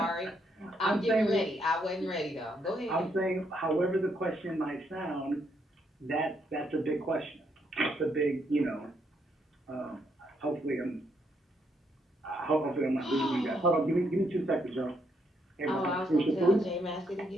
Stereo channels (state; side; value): normal; both; correlation 0.75